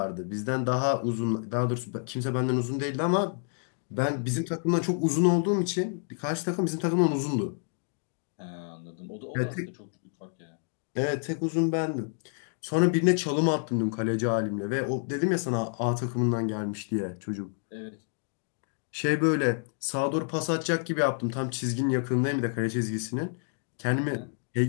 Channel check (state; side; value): silent; right; 57 dB below the other